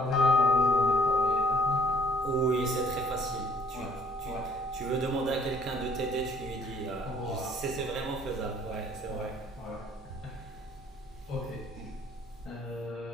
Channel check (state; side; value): normal; both; correlation 0.59